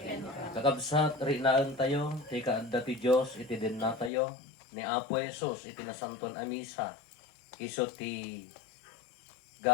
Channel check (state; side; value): drops out; right; at 4.1 s